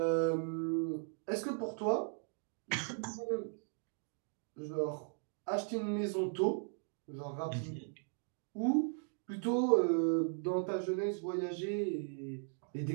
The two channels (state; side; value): silent; left; 53 dB below the other